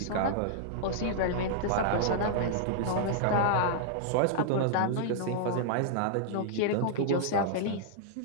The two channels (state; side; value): different; both; correlation -0.01